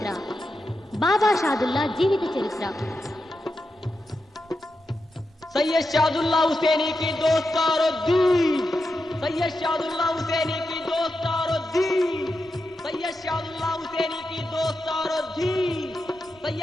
బాబా షాదుల్లా జీవిత చరిత్ర. सैयद शादुल्ला हुसैनी की दोस्तारो दी, सैयद शादुल्ला हुसैनी की दोस्तारो दी, सैयद शादुल्ला हुसैनी की दोस्तारो दी,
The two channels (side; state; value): both; normal; correlation 0.88